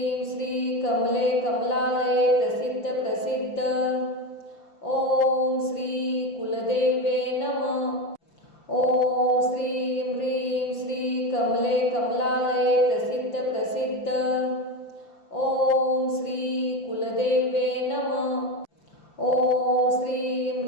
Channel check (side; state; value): right; late; 5.8 ms